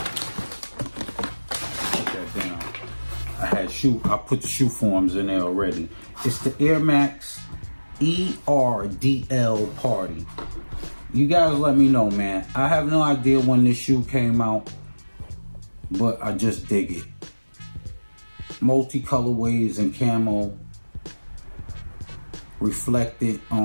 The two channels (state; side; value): inverted; both; correlation -1.00